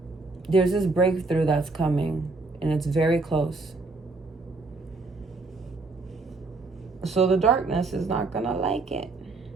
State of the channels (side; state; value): left; quieter; 3.6 dB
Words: There's this breakthrough that's coming and it's very close. So the darkness is not gonna like it.